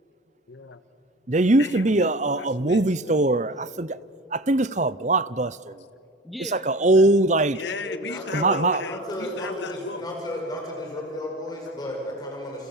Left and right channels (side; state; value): both; normal; correlation 0.36